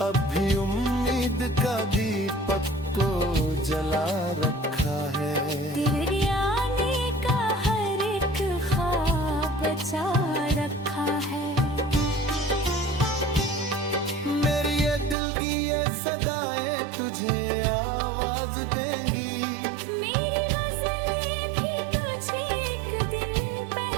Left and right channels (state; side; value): drops out; left; at 15.2 s